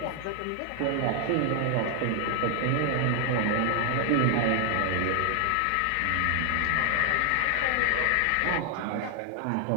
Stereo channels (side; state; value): both; different; correlation 0.00